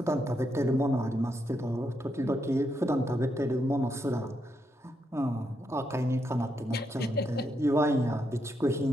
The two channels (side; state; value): both; normal; correlation 0.80